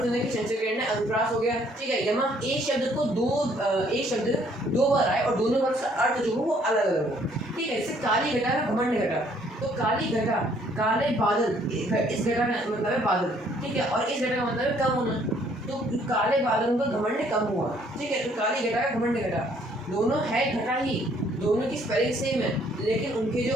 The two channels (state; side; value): normal; both; correlation 0.64